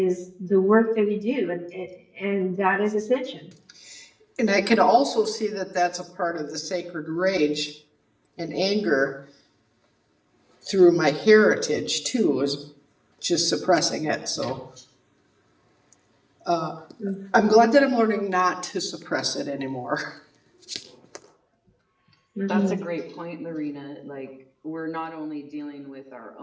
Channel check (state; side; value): identical; both; correlation 1.00